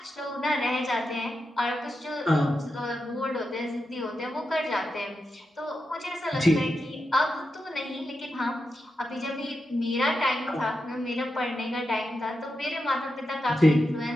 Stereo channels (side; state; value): both; normal; correlation 0.88